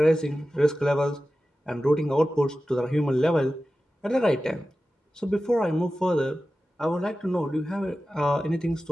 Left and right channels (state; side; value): normal; both; correlation 0.94